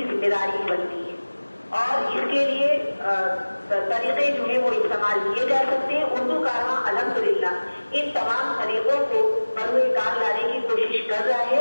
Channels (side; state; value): both; inverted; correlation -1.00